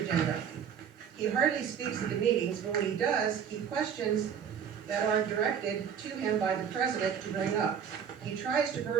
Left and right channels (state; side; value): quieter; left; 7.8 dB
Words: He hardly speaks at the meetings, but when he does, he questions that are directed to him by the president to bring up. He tries to